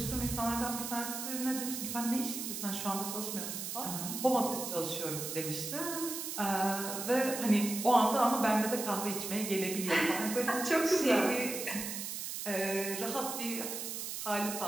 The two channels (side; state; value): right; noise; hiss, 5 dB below the sound